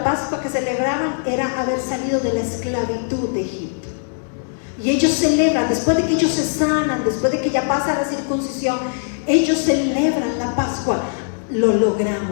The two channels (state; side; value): silent; right; digital silence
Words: Pascua que celebraban era haber salido de la esclavitud de Egipto. Y ellos celebran, después de que ellos se sanan, después de que ya pasa la circuncisión, ellos celebran la Pascua. Lo